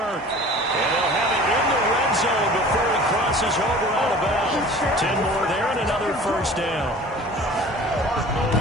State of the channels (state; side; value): normal; both; correlation 0.43